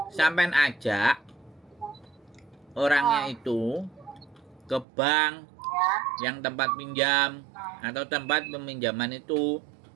Sampean ajak orangnya itu ke bank yang tempat pinjam atau tempat peminjaman itu,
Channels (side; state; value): left; drops out; at 4.9 s